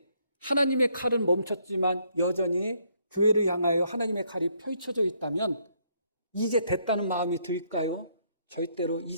하나님의 칼은 멈췄지만 여전히 교회를 향하여 하나님의 칼이 펼쳐져 있다면 이제 됐다는 마음이 들까요? 절대로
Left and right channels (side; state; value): both; inverted; correlation -0.70